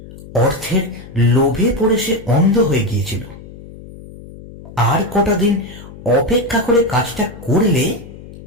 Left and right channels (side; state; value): left; noise; hum, 17 dB below the sound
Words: অর্থের লোভে পড়ে সে অন্ধ হয়ে গিয়েছিল। আর কটা দিন অপেক্ষা করে কাজটা করলে